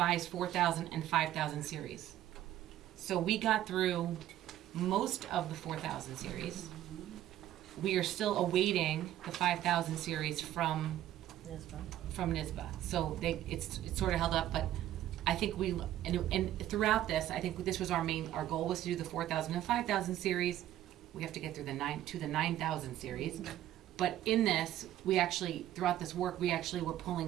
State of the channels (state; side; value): quieter; left; 12.9 dB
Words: 4,000 and 5,000 series. So we got through most of the 4,000 series. We are still awaiting the 5,000 series from NYSBA. So it's sort of held up, but I think and throughout this, I think this was our goal was to do the 4,000 and 5,000 series. We have to get through the 9,000 series. But in this, throughout this work, we actually were